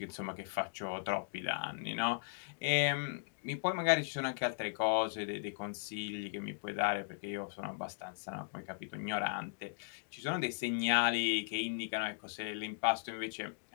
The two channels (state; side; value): silent; right; digital silence